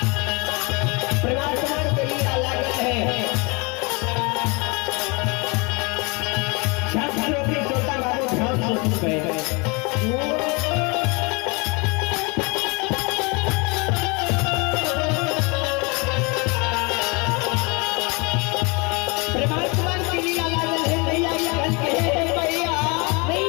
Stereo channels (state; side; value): quieter; right; 29.5 dB